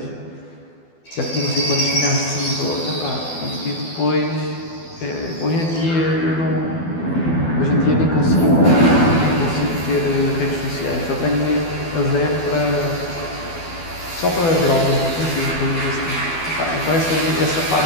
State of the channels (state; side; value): late; right; 12 ms